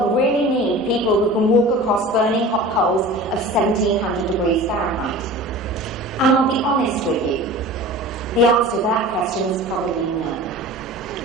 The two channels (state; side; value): normal; both; correlation 0.38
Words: really need people who can walk across burning hot coals of 1700 degrees Fahrenheit? And I'll be honest with you, the answer to that question is probably no.